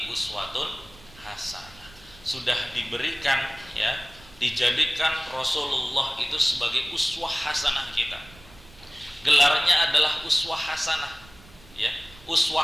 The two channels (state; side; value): noise; right; rumble, 23 dB below the sound